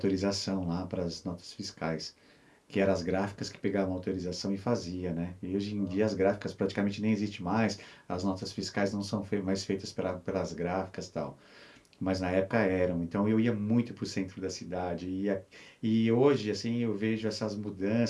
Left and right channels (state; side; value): identical; both; correlation 1.00